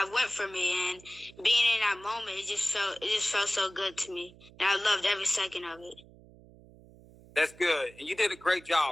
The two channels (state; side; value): noise; right; hum, 23 dB below the sound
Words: went for me, and being in that moment, it just felt so good to me, and I loved every second of it. That's good, and you did a great